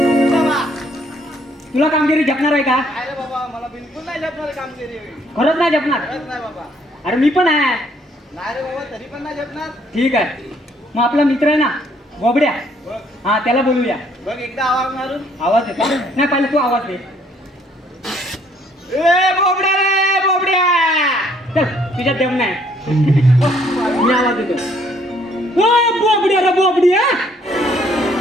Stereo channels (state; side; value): normal; both; correlation 0.65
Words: तुला कामगिरी जपणार आहे का? अरे बाबा, मला बिलकुल नाही झेपणार कामगिरी. खरंच नाही जपणार? खरंच नाही बाबा. अरे मी पण आहे. नाही रे बाबा, तरी पण नाही झेपणार. ठीक आहे, मग आपला मित्र आहे ना बोबड्या, बघ हा त्याला बोलूया. बघ, एकदा आवाज मारून. आवाज येतो? नाही, पहिले तू आवाज दे. ए बोबड्या रे बोबड्या, चल तुझ्यात दम नाही. मी आवाज देतो. ओ बोबड्या रे बोबड्या,